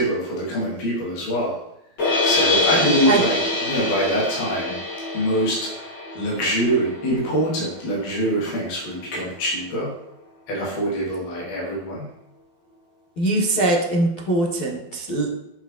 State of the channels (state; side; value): late; right; 12 ms